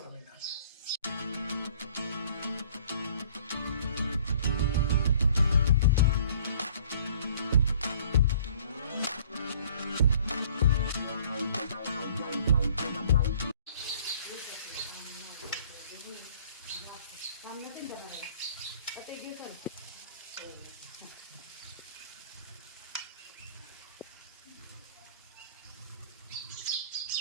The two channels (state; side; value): inverted; both; correlation -0.54